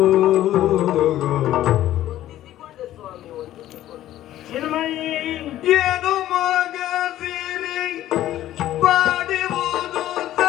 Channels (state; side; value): quieter; right; 13.4 dB